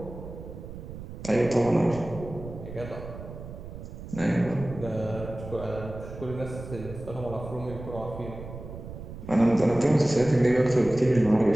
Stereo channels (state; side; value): noise; right; rumble, 12 dB below the sound